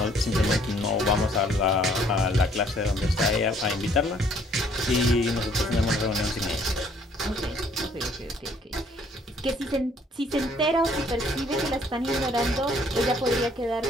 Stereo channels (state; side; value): normal; both; correlation 0.62